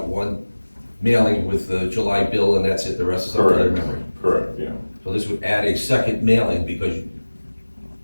one mailing with the July bill and that's it, the rest is up to their memory. Correct, yeah. So this would add a second mailing because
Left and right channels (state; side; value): inverted; both; correlation -1.00